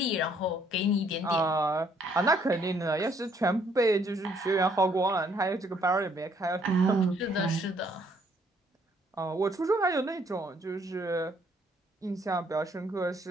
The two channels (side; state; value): both; normal; correlation 0.66